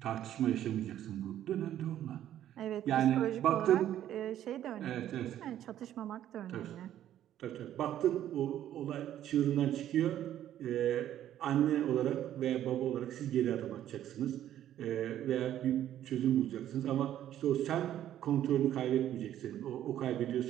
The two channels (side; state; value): left; quieter; 11.7 dB